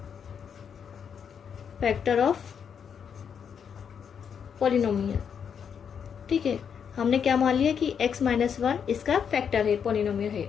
factor of polynomial. ठीक है, हमने क्या मान लिया कि x - 1 इसका फैक्टर है, पॉलिनोमियल है।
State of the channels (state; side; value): quieter; right; 7.4 dB